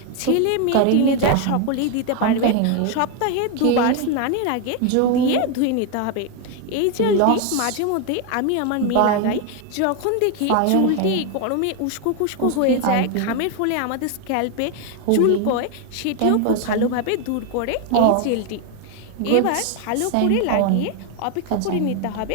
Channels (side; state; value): both; different; correlation 0.01